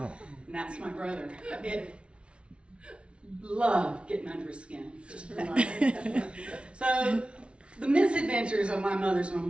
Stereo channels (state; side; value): late; left; 0.059 ms